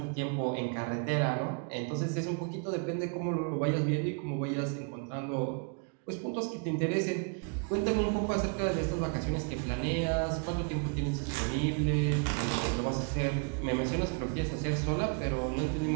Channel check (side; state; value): left; quieter; 37.8 dB